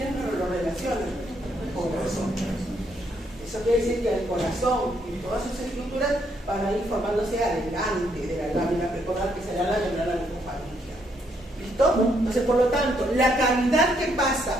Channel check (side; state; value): both; normal; correlation 0.73